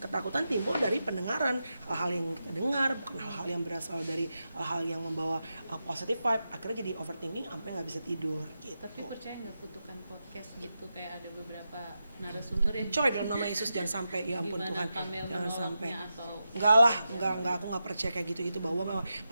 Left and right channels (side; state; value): both; inverted; correlation -0.89